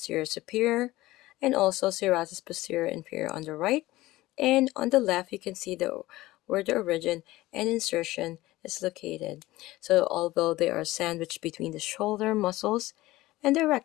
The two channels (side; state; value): right; quieter; 17.9 dB